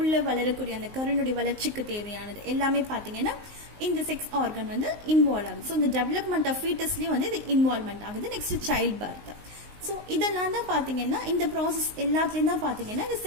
வளரக்கூடிய அந்த கருணுடைய வளர்ச்சிக்கு தேவையானது எல்லாமே பார்த்தீங்கன்னா இந்த செக்ஸ் ஆர்கன் வந்து இன்வால்வ் ஆகுது. ஸோ இந்த டெவலப்மெண்ட் ஆஃப் ஃபீட்டஸ்லயும் வந்து இது இன்வால்வ்மெண்ட் ஆகுது. Next child birth. ஸோ இதெல்லாம் தான் பார்த்தீங்கன்னா இந்த ப்ராசஸ் எல்லாத்துலேயும் தான் பார்த்தீங்கன்னா இந்த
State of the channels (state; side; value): late; left; 19 ms